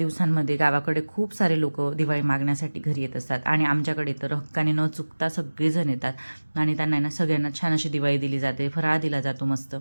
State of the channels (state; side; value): inverted; both; correlation -1.00